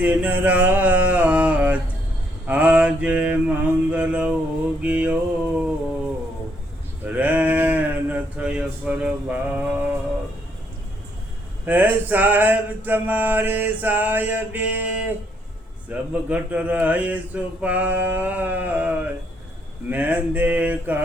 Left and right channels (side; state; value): both; normal; correlation 0.72